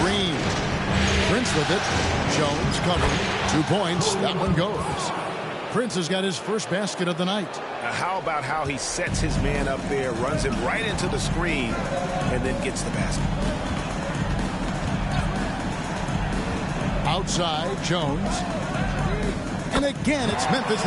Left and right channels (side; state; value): both; identical; correlation 1.00